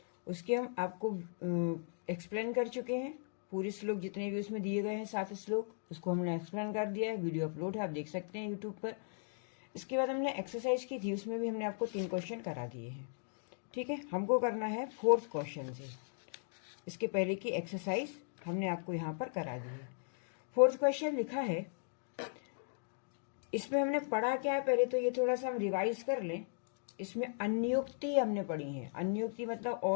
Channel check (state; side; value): silent; right; digital silence